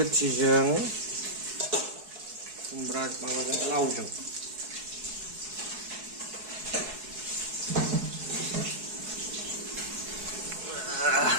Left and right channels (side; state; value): left; late; 4.7 ms